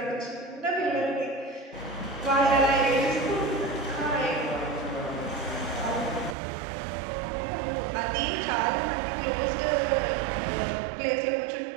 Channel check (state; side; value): drops out; left; at 6.4 s